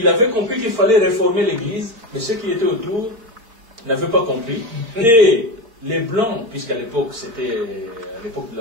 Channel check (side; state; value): left; late; 4.4 ms